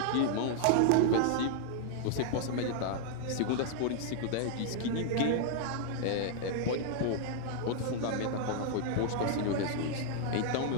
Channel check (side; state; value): both; different; correlation -0.01